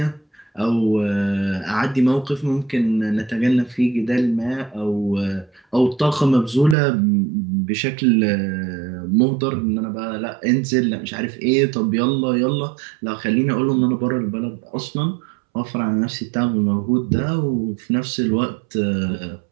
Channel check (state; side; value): drops out; left; at 6.8 s